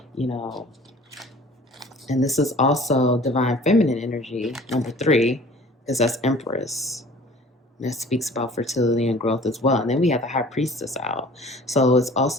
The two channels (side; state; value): both; normal; correlation 0.47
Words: and this is also divine feminine energy, number 3, because that's Empress. And that speaks about fertility and growth as well. And then we have the High Priestess out. So it's